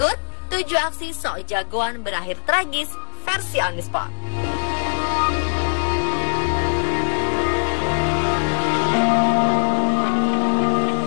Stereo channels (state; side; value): silent; right; digital silence